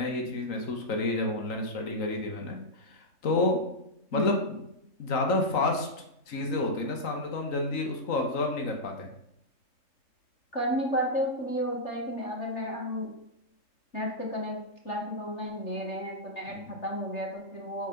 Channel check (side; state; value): right; late; 3.9 ms